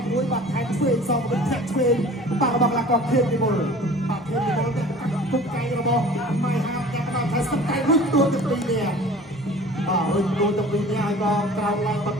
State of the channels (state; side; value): normal; both; correlation 0.44